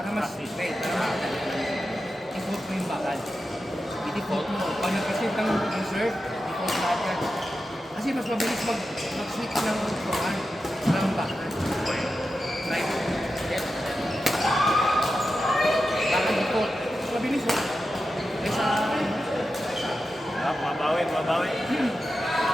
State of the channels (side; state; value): both; normal; correlation 0.91